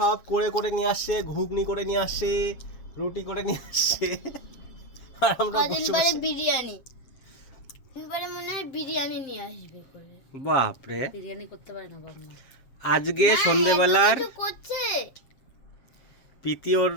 করে করে নিয়ে আসছে, ঘুগনি করে নিয়ে আসছে, রুটি করে নিয়ে আসছে, আর আমরা বসে বসে বিরিয়ানি এবারে মনে হয় বিরিয়ানি নিয়ে আসবে করে। বাপ রে, বিরিয়ানি করতে পারে না বাবা। আজকে সন্ধ্যেবেলার করছে প্রীতি ওর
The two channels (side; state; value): right; late; 7.5 ms